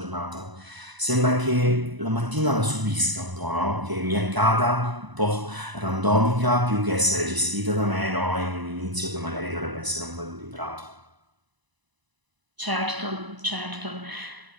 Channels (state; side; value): late; left; 1.0 ms